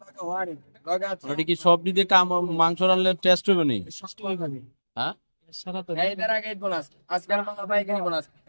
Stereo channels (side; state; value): both; inverted; correlation -1.00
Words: লগা ওয়ারি লগা আছে ওটা কি সব দিতে কাম মাংস রানলে টেস্ট হবে নি? হ্যাঁ সারা তো এই দ্বারা গেট বোনাস আজকাল মামা ভাই গেট বোনাস